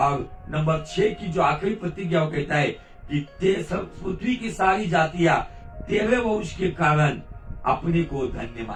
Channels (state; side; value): identical; both; correlation 1.00